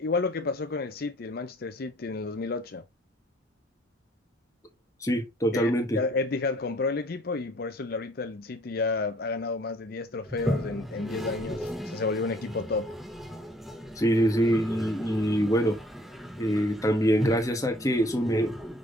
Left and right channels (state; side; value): normal; both; correlation 0.58